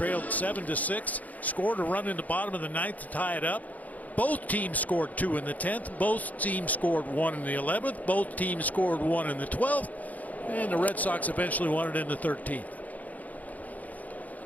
7-6, scored a run in the bottom of the 9th to tie it up. Both teams scored 2 in the 10th. Both teams scored 1 in the 11th. Both teams scored 1 in the 12th. And the Red Sox eventually won it in the 13th.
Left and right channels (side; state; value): right; late; 0.077 ms